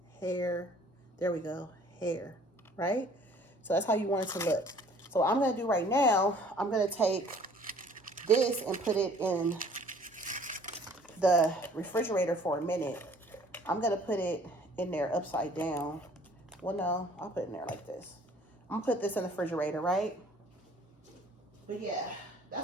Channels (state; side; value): normal; both; correlation 0.54